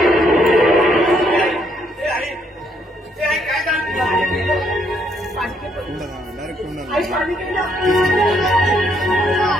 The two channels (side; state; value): both; normal; correlation 0.72